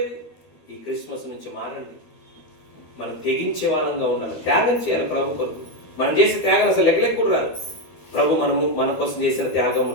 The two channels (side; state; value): right; late; 13 ms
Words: ఈ క్రిస్మస్ నుంచి మారండి. మనం తెగించే వాళ్ళంగా ఉండాలి, త్యాగం చేయాలి ప్రభు కొరకు. మనం చేసే త్యాగం అసలు లెక్కలెక్క కూడా రాదు. ప్రభు మన కోసం చేసిన